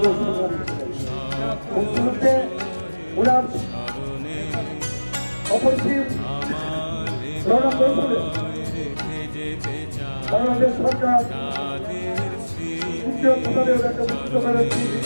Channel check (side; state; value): both; inverted; correlation -1.00